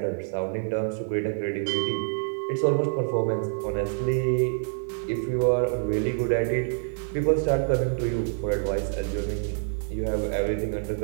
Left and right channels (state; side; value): silent; left; digital silence